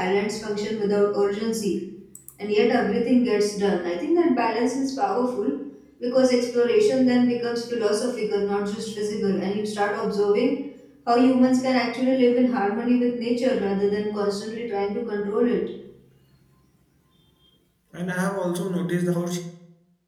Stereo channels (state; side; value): identical; both; correlation 1.00